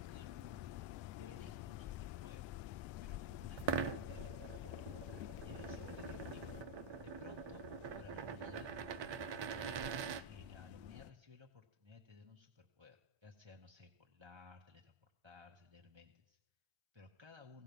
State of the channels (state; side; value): late; left; 1.2 ms